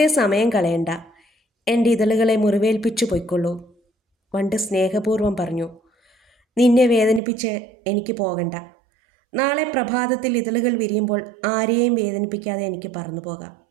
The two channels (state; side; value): drops out; left; at 7.2 s